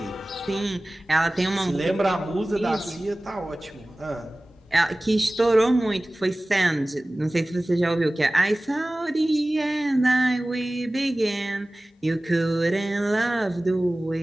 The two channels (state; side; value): normal; both; correlation 0.98